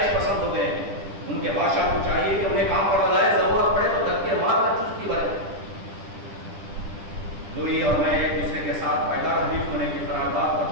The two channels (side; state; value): left; late; 10 ms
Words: پسند ہو گئے. ان کے بادشاہ کو چاہیے کہ انہیں کام پڑ جائے. ضرورت پڑے تو دھکے مار کر چستی برے. لوئی اور میں ایک دوسرے کے ساتھ پائیدار حلیف ہونے کی قرارداد